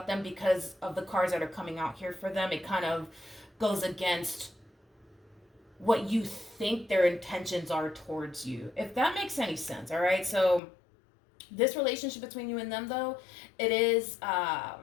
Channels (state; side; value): drops out; right; at 10.6 s